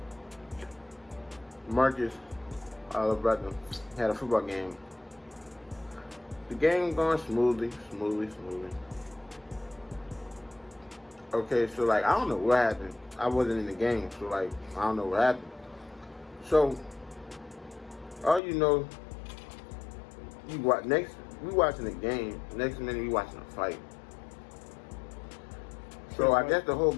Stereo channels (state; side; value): drops out; right; at 18.4 s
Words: Marcus, our little brother, had a football game. The game going smoothly. Okay, so I don't know what happened. I wasn't in the game, so I don't know what happened. So all we watching the game. Next minute we watching a fight. So I guess the whole